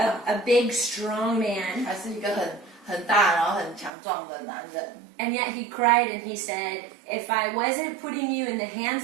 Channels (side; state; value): left; drops out; at 3.9 s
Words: big, strong man. 还是一个很大然后很强壮的男人。 And yet he cried and he said, if I wasn't putting you in the